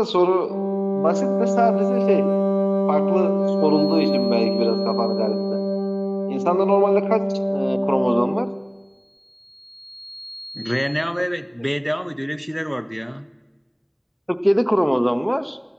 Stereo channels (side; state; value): both; identical; correlation 1.00